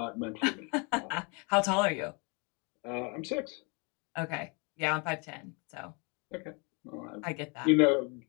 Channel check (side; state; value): right; quieter; 32.8 dB